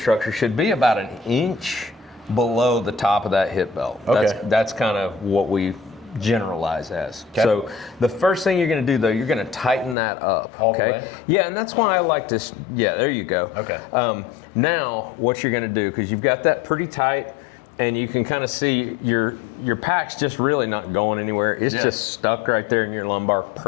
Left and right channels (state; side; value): drops out; right; at 10.0 s